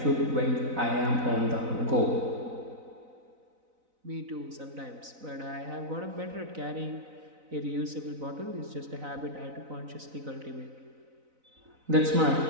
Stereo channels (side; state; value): left; late; 4.0 ms